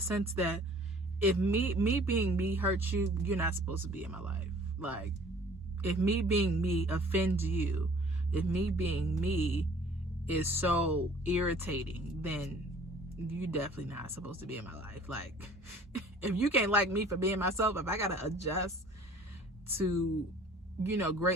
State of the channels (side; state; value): both; normal; correlation 0.51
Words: that if me being me hurts you, you're not supposed to be in my life. Like, if me being me offends you, if me being me is so irritating, then you definitely not supposed to be in my life. Like, if you can't like me for being myself, if I gotta adjust to,